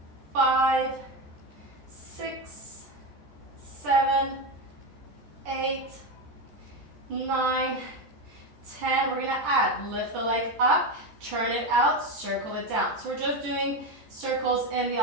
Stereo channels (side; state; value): left; late; 14 ms